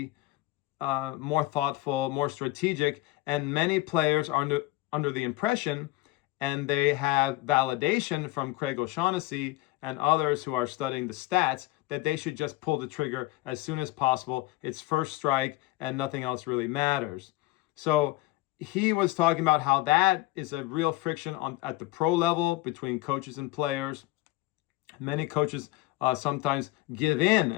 more thoughtful, more strategic, and many players are under the impression, and they have validation from Craig O'Shaughnessy and others who are studying the stats, that they should just pull the trigger as soon as possible. It's first strike and nothing else really matters. So he was talking about how that is a real friction at the pro level between coaches and players. Many coaches sometimes give in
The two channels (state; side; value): quieter; right; 18.5 dB